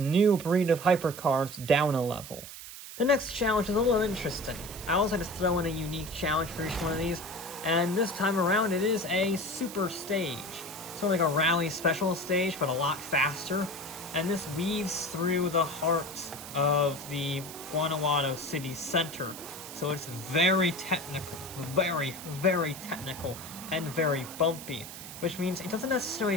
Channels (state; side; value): noise; right; hiss, 12 dB below the sound